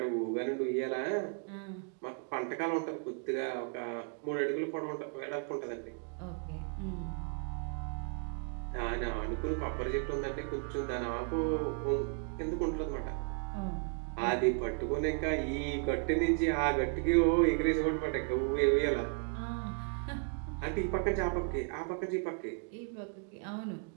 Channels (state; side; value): quieter; left; 38.4 dB